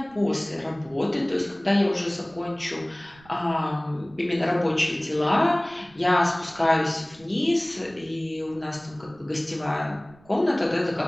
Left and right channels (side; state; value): right; noise; rumble, 26 dB below the sound